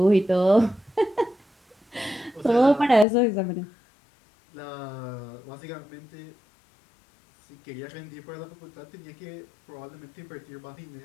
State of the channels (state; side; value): drops out; right; at 3.1 s